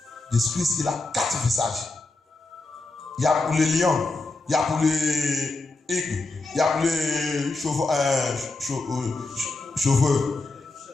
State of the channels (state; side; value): quieter; right; 3.3 dB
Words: Jésus-Christ, il a quatre visages. Il y a pour les lions, il y a pour les aigles, il y a pour les cheveux.